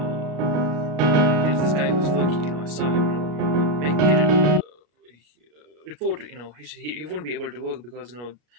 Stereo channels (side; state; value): left; late; 33 ms